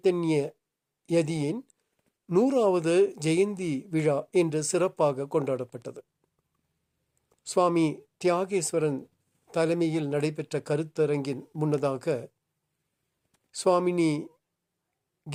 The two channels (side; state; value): both; identical; correlation 1.00